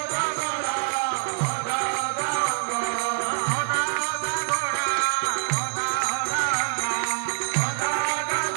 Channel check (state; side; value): silent; left; digital silence